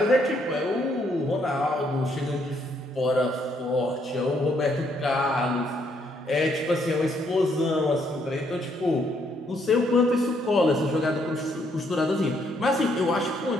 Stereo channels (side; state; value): both; normal; correlation 0.71